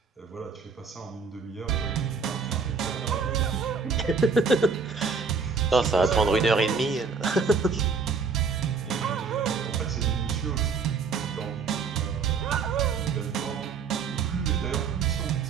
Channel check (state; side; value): quieter; left; 5.2 dB